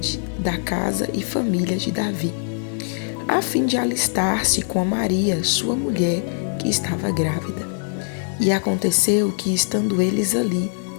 da casa e família de Davi, a fim de alistar-se com Maria, sua mulher, que estava grávida. E aconteceu que, estando eles ali,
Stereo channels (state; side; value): silent; right; digital silence